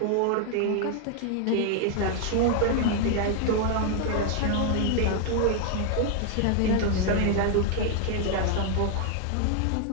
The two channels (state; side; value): different; both; correlation 0.00